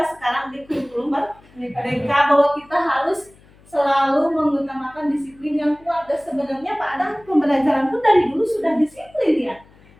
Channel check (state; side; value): noise; left; hum, 27 dB below the sound